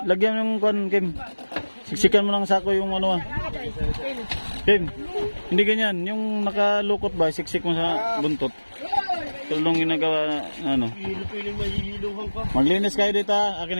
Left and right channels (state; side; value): inverted; both; correlation -1.00